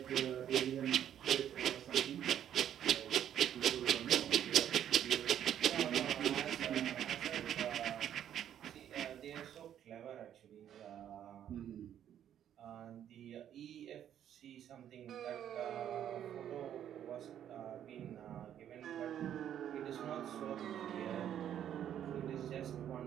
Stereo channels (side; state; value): left; quieter; 10.2 dB